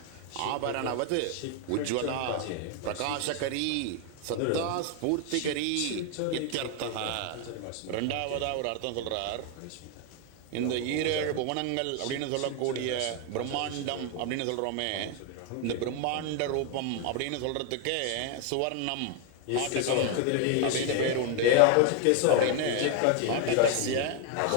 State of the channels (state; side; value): different; both; correlation 0.01